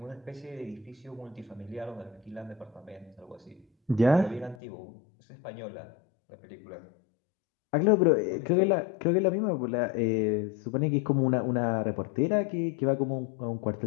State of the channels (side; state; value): right; drops out; at 4.5 s